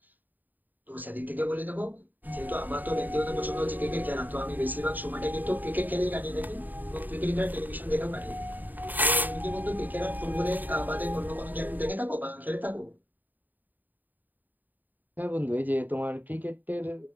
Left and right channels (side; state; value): left; late; 0.087 ms